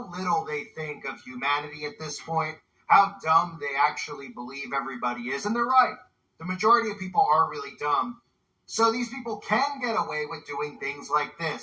little they think of humanity at this point, how dumb they actually believe everybody is. And they're right. The majority of people are really dumb. So these people can get away with doing things like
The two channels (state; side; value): identical; both; correlation 1.00